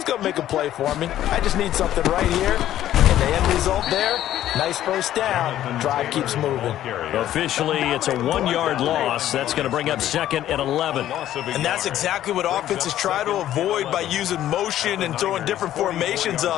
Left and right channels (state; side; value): quieter; right; 12.5 dB